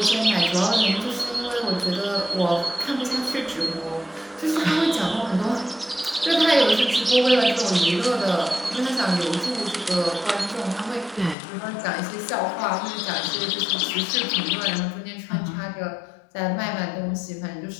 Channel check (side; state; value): right; drops out; at 11.4 s